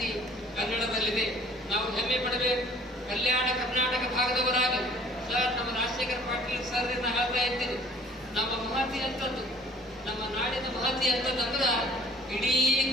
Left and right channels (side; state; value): both; normal; correlation 0.52